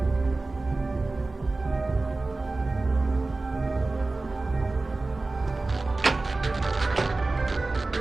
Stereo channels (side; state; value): left; quieter; 3.3 dB